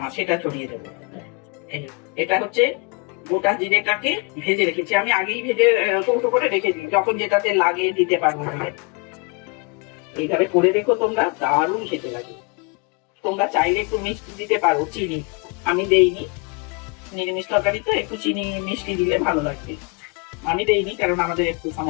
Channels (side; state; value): right; quieter; 32.6 dB